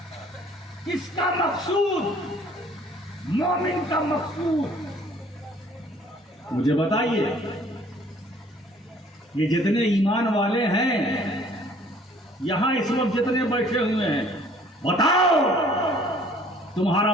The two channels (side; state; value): both; normal; correlation 0.56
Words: کس کا مقصود؟ مومن کا مقصود. مجھے بتائیے یہ جتنے ایمان والے ہیں یہاں اس وقت جتنے بیٹھے ہوئے ہیں، بتاؤ تمہارا